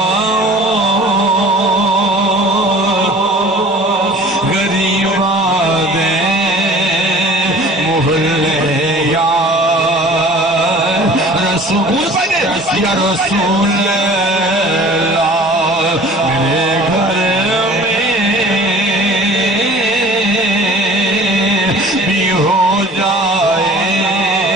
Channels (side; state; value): both; normal; correlation 0.46